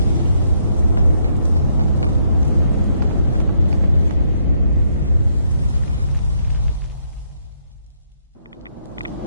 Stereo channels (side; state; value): both; inverted; correlation -0.73